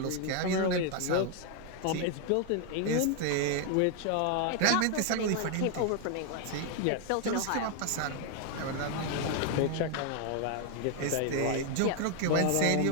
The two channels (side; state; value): both; different; correlation 0.00